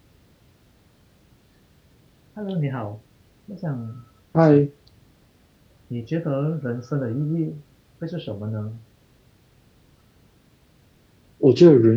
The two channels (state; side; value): identical; both; correlation 1.00